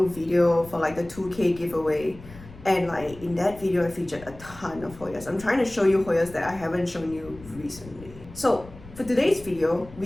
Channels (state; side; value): noise; left; rumble, 18 dB below the sound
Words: video for the 2K giveaway. And in that video, I featured a ton of Hoyas. I'm trying to show you Hoyas that I haven't shown you recently. So for today's video,